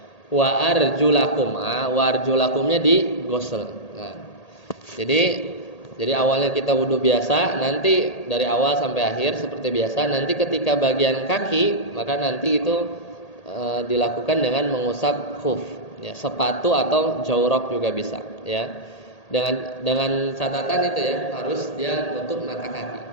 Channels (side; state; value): right; late; 1.8 ms